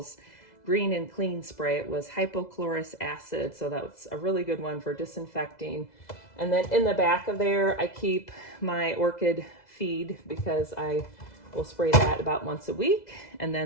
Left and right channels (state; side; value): late; right; 2.0 ms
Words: green and clean spray. It was hypochlorous acid, so that's a really good one for disinfecting. And then in the back of there, I keep my orchid feed because I will spray that about once a week. And